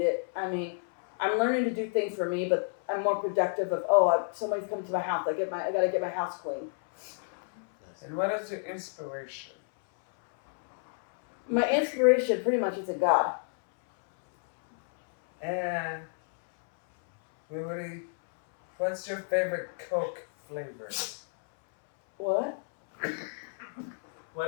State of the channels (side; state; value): right; silent; 58 dB below the other